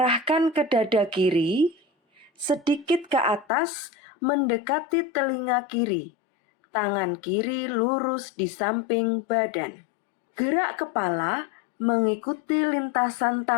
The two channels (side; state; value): right; drops out; at 3.5 s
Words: ke dada kiri, sedikit ke atas mendekati telinga kiri. Tangan kiri lurus di samping badan. Gerak kepala mengikuti lintasan